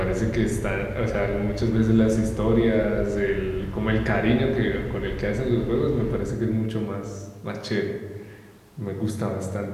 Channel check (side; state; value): both; identical; correlation 1.00